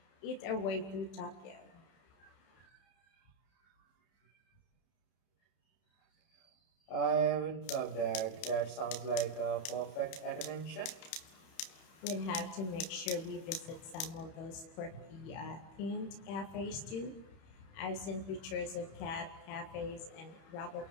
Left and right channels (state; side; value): late; right; 31 ms